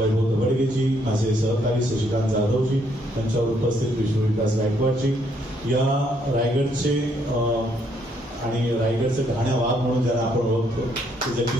दबडगेजी, माझे सहकारी शशिकांत जाधवजी, त्यांच्यावर उपस्थित विष्णुविकास गायकवाडजी, या रायगडचे आणि रायगडचे घाण्या वाघ म्हणून ज्यांना आपण ओळखतो ते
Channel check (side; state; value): both; normal; correlation 0.71